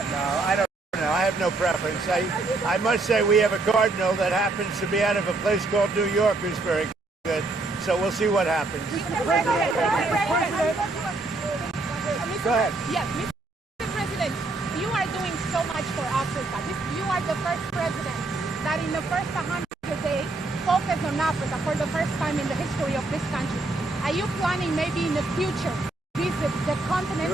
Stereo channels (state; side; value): quieter; left; 3.2 dB